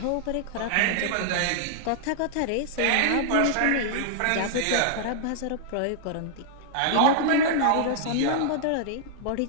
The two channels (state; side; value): different; both; correlation -0.01